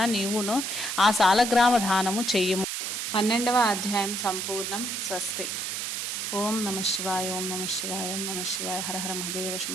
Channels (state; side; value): noise; right; hiss, 3 dB below the sound